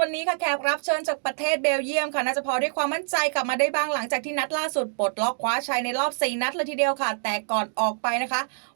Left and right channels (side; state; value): left; silent; digital silence